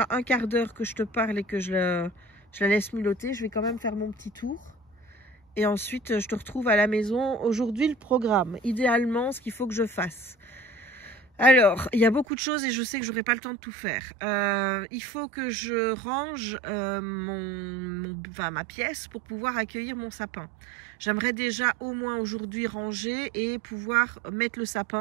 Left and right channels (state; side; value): drops out; left; at 12.2 s